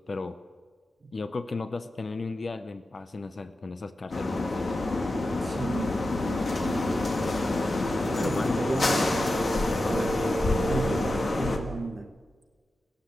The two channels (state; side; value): normal; both; correlation 0.91